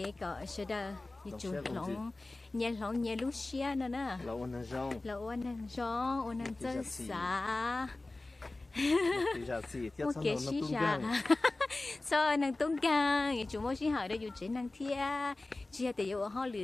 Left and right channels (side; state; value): right; quieter; 3.0 dB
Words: có sẽ đờ như chủ lỏng nhẹ lúc xia nữa nè là ôn năng rong ôn năng chân xả một kế xí xả so năng tung gang như chủ mỗi xí hỏi đây dù chế năng thia chia để yêu họ